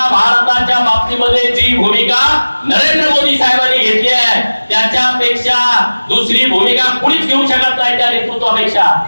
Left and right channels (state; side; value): inverted; both; correlation -1.00